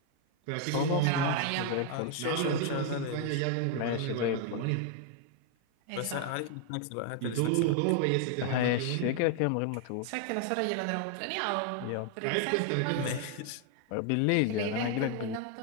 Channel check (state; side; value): different; both; correlation 0.00